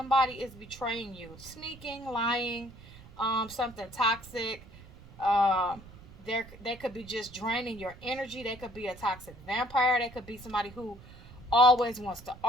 is betraying you, sneaking, lying, something toxic. Um, they could be just draining your energy. They could be a toxic vampire. They could be somebody who always wants to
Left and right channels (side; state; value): right; noise; rumble, 19 dB below the sound